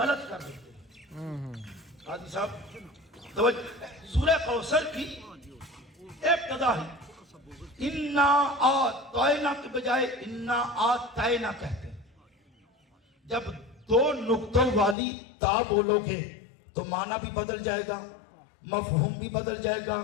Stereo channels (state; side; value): drops out; right; at 15.0 s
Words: کر دیتے ہیں۔ قاضی صاحب توجہ، سورہ کوثر کی ابتدا ہی انا آتینا کے بجائے انا آتینا کہتے ہیں۔ جب دو نقطوں والی تا بولو گے تو معنی بھی بدل جائے گا، مفہوم بھی بدل جائے گا،